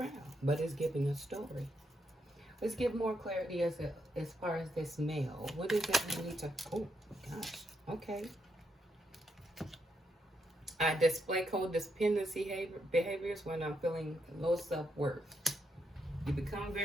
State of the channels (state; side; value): normal; both; correlation 0.79